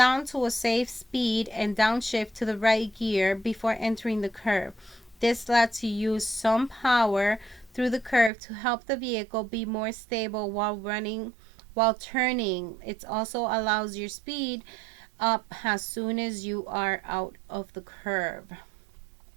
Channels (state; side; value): drops out; left; at 8.3 s